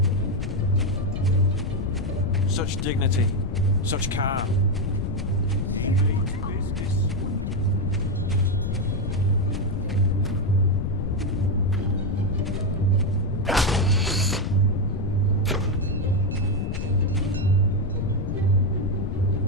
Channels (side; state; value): left; noise; rumble, 3 dB below the sound